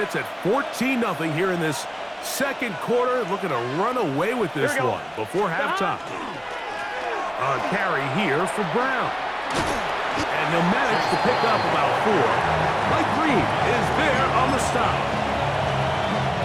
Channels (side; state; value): both; identical; correlation 1.00